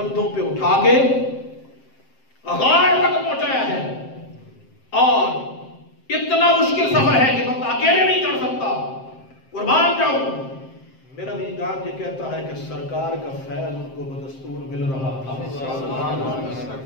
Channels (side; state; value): right; late; 7.6 ms